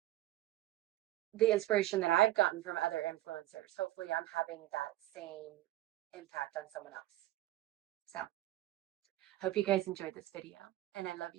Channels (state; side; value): quieter; left; 15.5 dB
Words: the inspiration that I've gotten from other influencers, hopefully I'm having that same impact on someone else. So, hope you guys enjoyed this video, and I love